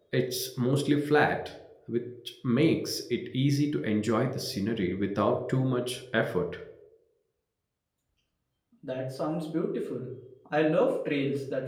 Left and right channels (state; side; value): identical; both; correlation 1.00